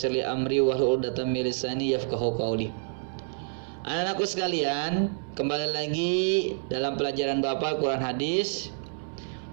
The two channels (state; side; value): silent; left; 59 dB below the other